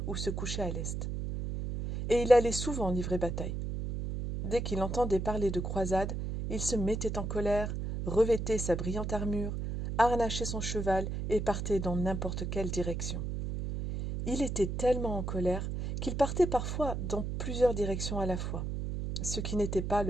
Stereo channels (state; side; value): noise; right; hum, 3 dB below the sound